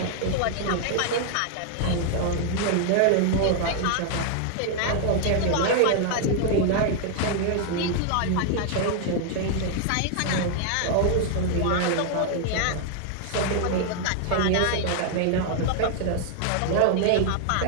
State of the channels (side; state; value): both; different; correlation 0.00